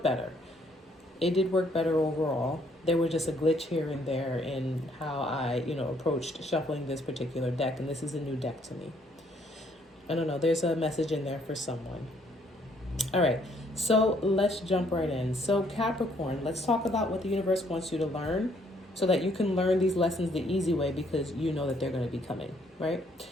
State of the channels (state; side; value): normal; both; correlation 0.67